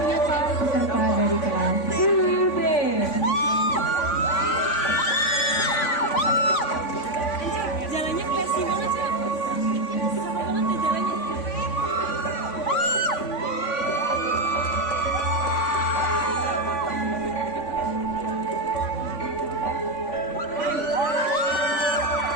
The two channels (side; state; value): right; late; 3.5 ms